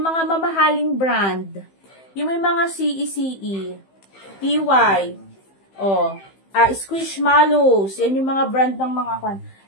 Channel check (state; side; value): late; right; 15 ms